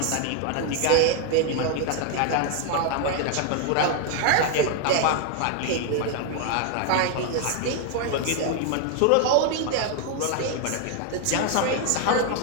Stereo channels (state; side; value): different; both; correlation 0.01